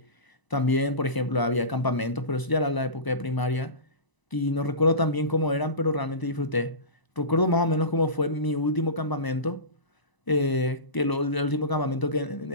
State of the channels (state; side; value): late; right; 1.0 ms